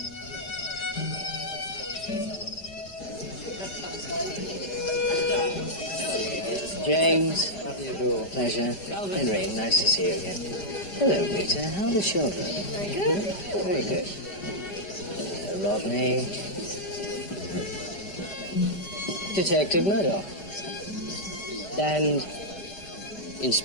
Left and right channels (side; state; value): right; late; 5.1 ms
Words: James, how do you do? Pleasure. Henry, nice to see you again. Hello, Rita. How are the children? Very good. Very good. Rodney. Detective Murdoch. And